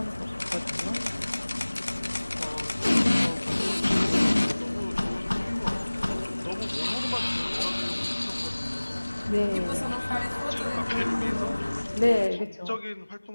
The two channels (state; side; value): inverted; both; correlation -1.00